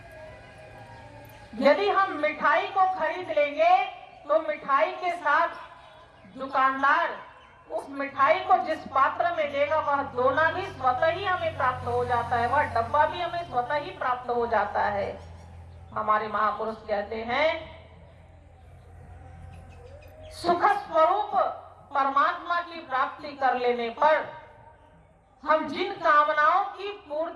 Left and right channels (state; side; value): identical; both; correlation 1.00